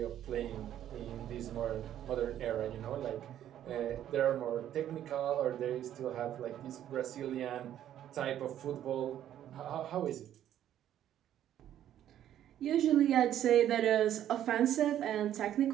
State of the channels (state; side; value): quieter; left; 11.2 dB